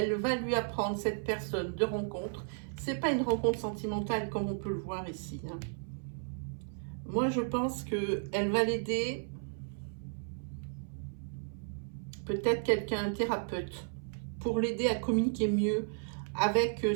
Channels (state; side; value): silent; left; 55 dB below the other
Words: va lui apprendre, cette personne de rencontre. C'est pas une rencontre sentimentale comme on peut le voir ici. Hein. Moi, je pense qu'elle va l'aider. Peut-être quelqu'un, un thérapeute, pour l'aider à communiquer mieux avec